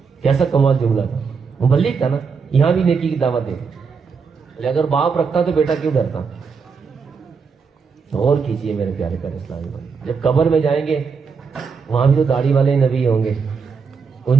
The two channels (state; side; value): quieter; left; 5.5 dB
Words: کیسا کمال جملہ تھا, مبلغ تھا نا, یہاں بھی نیکی کی دعوت دے. بولے اگر باپ رکھتا تو بیٹا کیوں ڈرتا. اور کیجئے میرے پیارے پیارے اسلامی بھائی, جب قبر میں جائیں گے وہاں بھی تو داڑھی والے نبی ہوں گے,